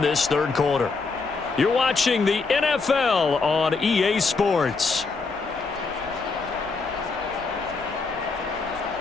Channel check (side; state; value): right; quieter; 4.3 dB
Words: this 3rd quarter. You're watching the NFL on EA Sports.